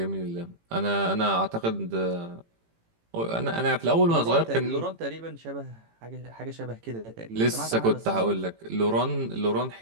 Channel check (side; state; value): left; late; 18 ms